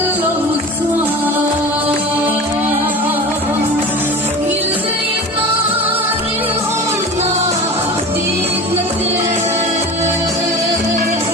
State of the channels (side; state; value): both; normal; correlation 0.34